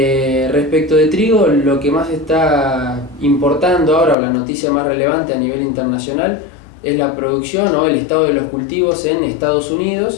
de trigo, lo que más está importando ahora, o la noticia más relevante a nivel internacional, es la producción o el estado de los cultivos en Estados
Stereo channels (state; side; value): drops out; right; at 4.2 s